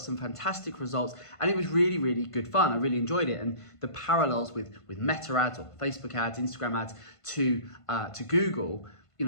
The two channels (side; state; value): right; late; 1.5 ms